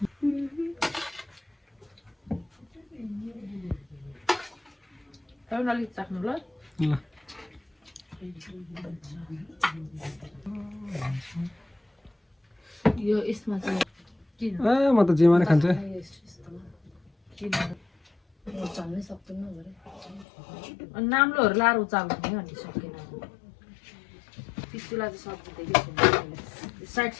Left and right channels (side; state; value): right; drops out; at 20.2 s